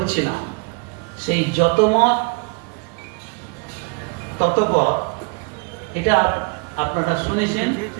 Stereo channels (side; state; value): left; quieter; 33.0 dB